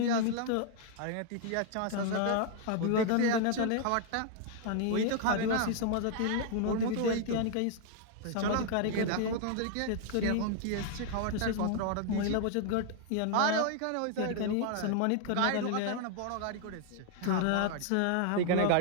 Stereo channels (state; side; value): different; both; correlation 0.00